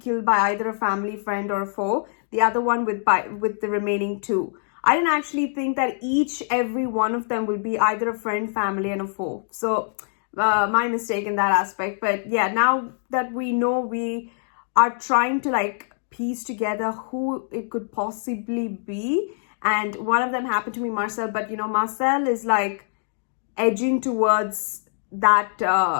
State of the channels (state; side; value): silent; right; digital silence